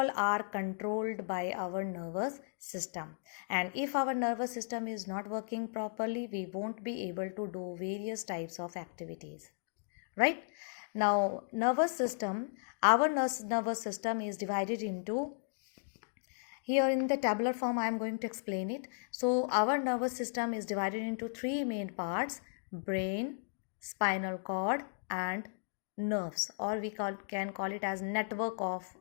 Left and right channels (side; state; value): right; silent; digital silence